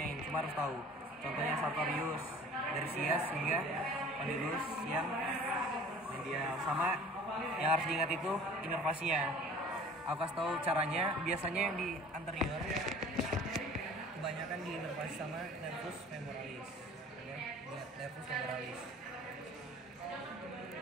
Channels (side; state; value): both; normal; correlation 0.47